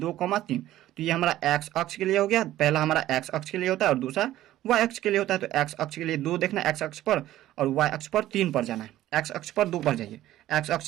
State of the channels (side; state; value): left; quieter; 14.1 dB